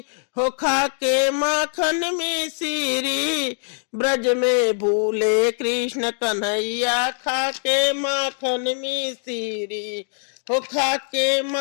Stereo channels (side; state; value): right; silent; 64 dB below the other